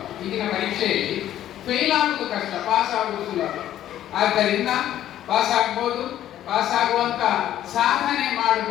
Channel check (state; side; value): quieter; right; 12.0 dB